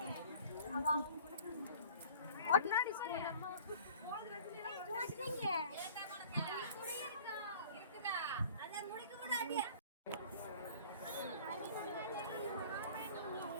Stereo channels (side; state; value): both; inverted; correlation -0.47